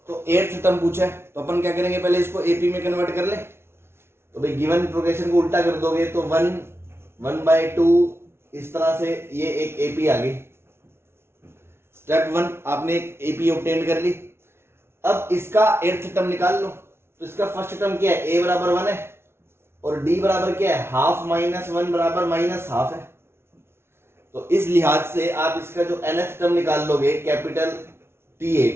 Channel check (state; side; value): late; left; 0.12 ms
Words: तो 8th टर्म पूछा है, तो अपन क्या करेंगे, पहले इसको AP में कन्वर्ट कर ले। तो भाई गिवन प्रोग्रेशन को उल्टा कर दोगे तो 1/2 इस तरह से ये एक AP आ गई। स्टेप 1 आपने एक AP ऑब्टेन कर ली। अब इसका 8th टर्म निकाल लो, तो इसका फर्स्ट टर्म क्या है, a बराबर 1 है, और d बराबर क्या है, हाफ माइनस 1 बराबर माइनस हाफ है। तो इस लिहाज से आप इसका जो nth टर्म निकाल लोगे कैपिटल